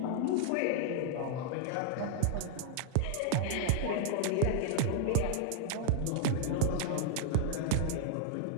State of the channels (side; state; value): both; different; correlation -0.01